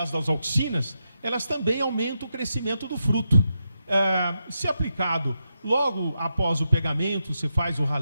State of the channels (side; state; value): both; inverted; correlation -0.85